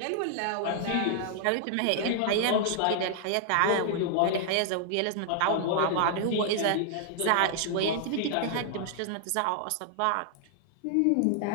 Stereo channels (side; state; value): both; different; correlation -0.01